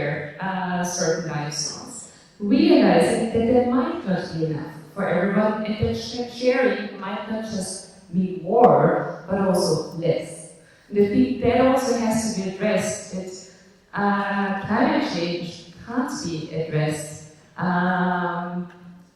certain lifestyles, realizing that there might not be enough for everyone, and that sharing might not just mean more, but also less. And I think that also has to be addressed, that climate change can't be addressed.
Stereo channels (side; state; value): both; identical; correlation 1.00